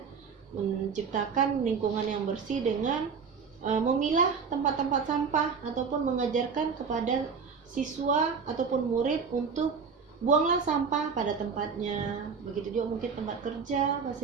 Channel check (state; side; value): quieter; left; 5.8 dB